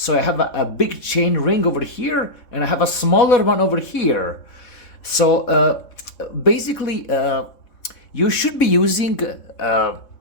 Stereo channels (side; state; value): right; late; 3.7 ms